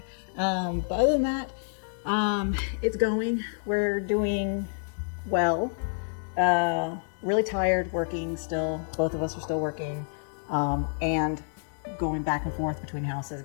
But other than that, it's going. We're doing well. Really tired working still. Both of us are still working, and going back and forth between houses,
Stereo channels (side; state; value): right; silent; digital silence